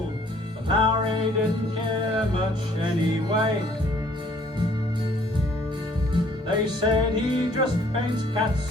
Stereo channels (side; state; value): both; normal; correlation 0.60